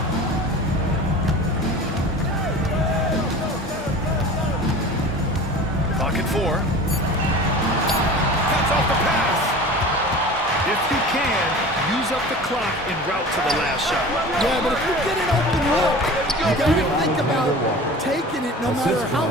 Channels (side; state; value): both; normal; correlation 0.38